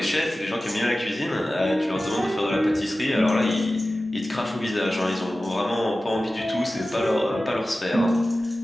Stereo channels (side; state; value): both; normal; correlation 0.96